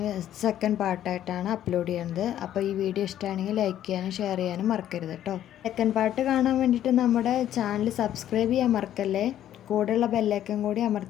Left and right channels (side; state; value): right; quieter; 11.5 dB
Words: സെക്കൻഡ് പാർട്ടായിട്ടാണ് അപ്ലോഡ് ചെയ്യുന്നത്. അപ്പോൾ ഈ വീഡിയോ ഇഷ്ടമാണെങ്കിൽ ലൈക്ക് ചെയ്യാനും ഷെയർ ചെയ്യാനും മറക്കരുത് കേട്ടോ. സെക്കൻഡ് പാർട്ട് കാണാൻ വേണ്ടിയിട്ട് നമ്മുടെ ചാനൽ സബ്സ്ക്രൈബ് ചെയ്യാൻ മറക്കല്ലേ. കൂടെയുള്ള ബെല്ലൈക്കൺ കൂടി